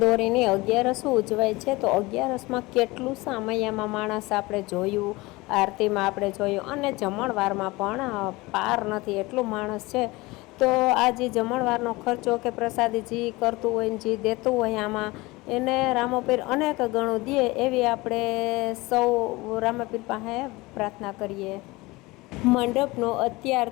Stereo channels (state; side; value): quieter; right; 22.1 dB